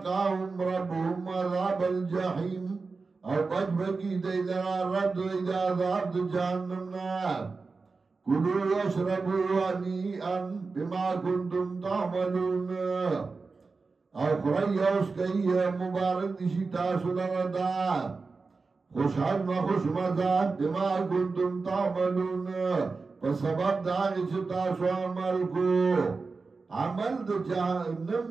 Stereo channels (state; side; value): quieter; left; 4.2 dB